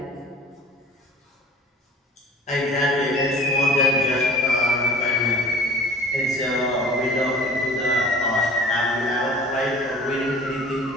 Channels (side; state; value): both; normal; correlation 0.45